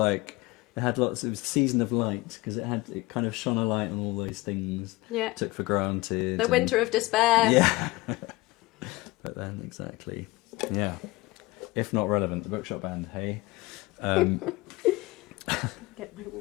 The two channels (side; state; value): right; quieter; 21.4 dB